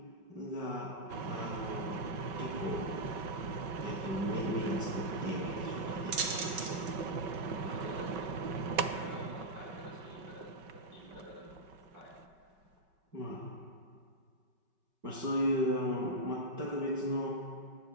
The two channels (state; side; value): late; left; 5.3 ms